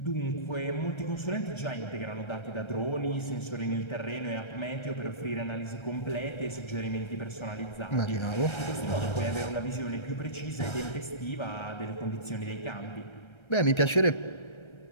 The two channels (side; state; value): right; late; 1.3 ms